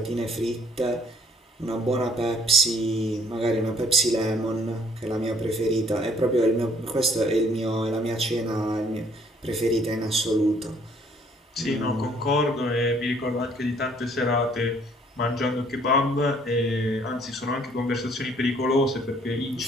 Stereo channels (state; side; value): normal; both; correlation 0.61